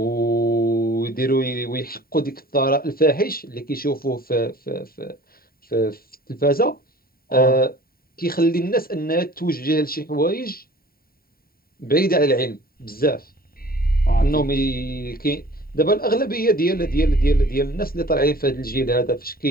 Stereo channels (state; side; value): late; right; 0.43 ms